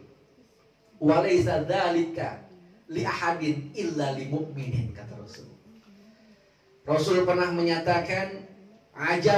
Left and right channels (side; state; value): both; identical; correlation 1.00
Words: wa laysa dzalika li ahadin illa li mu'minin, kata Rasul. Rasul pernah menyatakan,